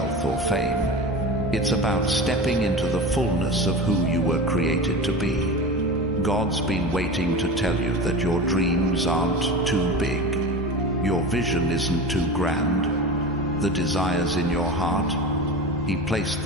or fame. It's about stepping into the fullness of who you were created to be. God's been waiting to tell you that your dreams aren't too big. Your vision isn't too grand. The desires in your heart, he placed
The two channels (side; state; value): both; normal; correlation 0.30